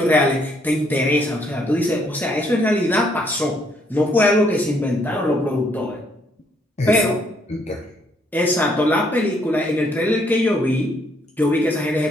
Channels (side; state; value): both; normal; correlation 0.69